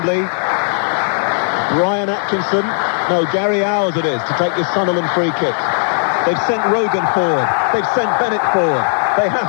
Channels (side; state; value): right; silent; 65 dB below the other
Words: Brian Atkinson, no, Gary Owers it is, to take this Sunderland free kick. They've sent Rogan forward. They've sent Bennett forward. They